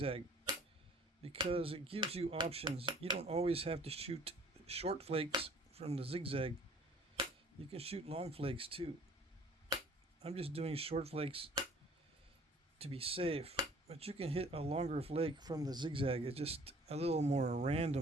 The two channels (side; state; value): both; normal; correlation 0.52